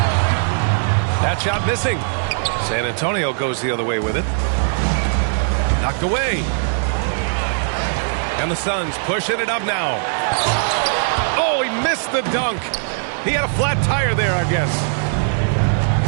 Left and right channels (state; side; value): silent; left; digital silence